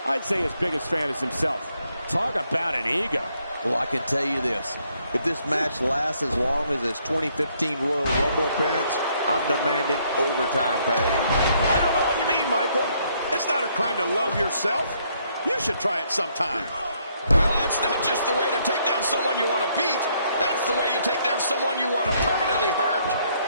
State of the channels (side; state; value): both; inverted; correlation -0.70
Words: I'd say his biggest fan is himself. Talk about an ego. Well, I can tell you this. If this match lasts as long as his 2015 Royal Rumble appearance, I'm demanding overtime pay. I don't know what you mean, Michael. It's not a crime to love yourself. You should try it sometime. Well, that's not just the way to take down someone you want to beat. That's the way you take down someone you want to permanently hurt.